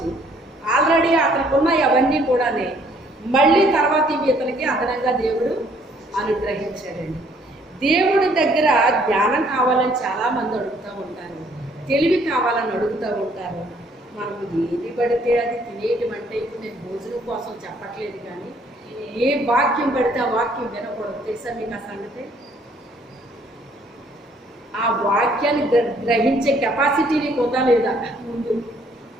ఆల్రెడీ అతనికి ఉన్నాయి అవన్నీ కూడానే, మళ్ళీ తర్వాత ఇవి ఇతనికి అదనంగా దేవుడు అనుగ్రహించాడండి. దేవుడి దగ్గర జ్ఞానం కావాలని చాలామంది అడుగుతూ ఉంటారు, తెలివి కావాలని అడుగుతూ ఉంటారు. మనము ఏది పడితే అది తినేయటం అంటే, ఇప్పుడు నేను భోజనం కోసం చెప్పట్లేదు కానీ ఏ వాక్యం పడితే ఆ వాక్యం వినకూడదు. తెలుసా మీకు ఆ సంగతి? ఆ వాక్యాన్ని గ్రహించే కెపాసిటీ నీకు ఉందా లేదా? ముందు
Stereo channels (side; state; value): both; normal; correlation 0.63